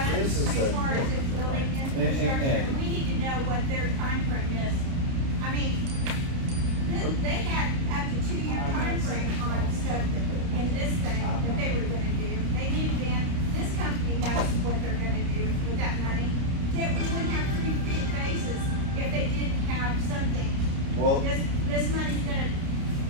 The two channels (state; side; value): late; left; 30 ms